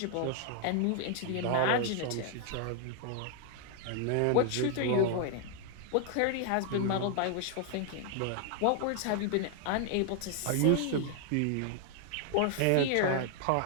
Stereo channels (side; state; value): both; different; correlation 0.00